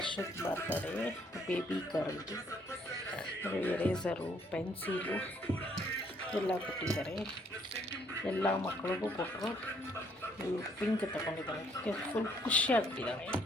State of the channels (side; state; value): both; normal; correlation 0.66